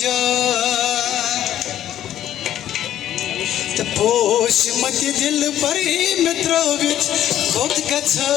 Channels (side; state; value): right; quieter; 11.8 dB